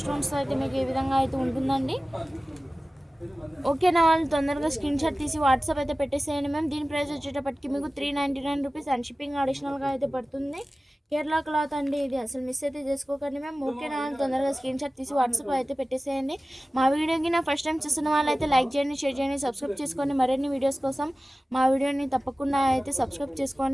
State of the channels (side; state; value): both; normal; correlation 0.96